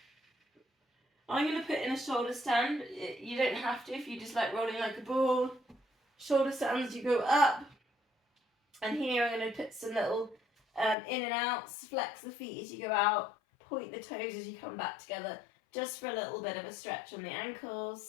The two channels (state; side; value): drops out; right; at 11.0 s